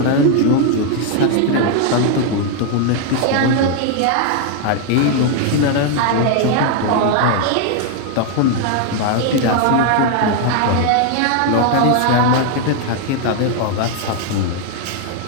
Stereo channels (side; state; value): both; different; correlation 0.00